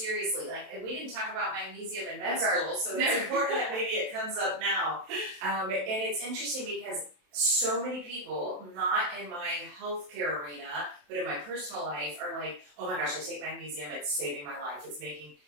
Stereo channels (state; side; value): late; left; 27 ms